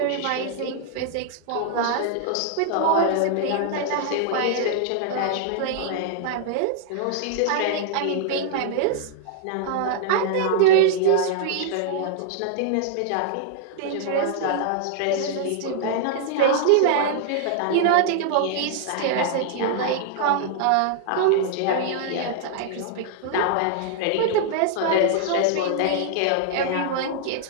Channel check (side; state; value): both; different; correlation -0.01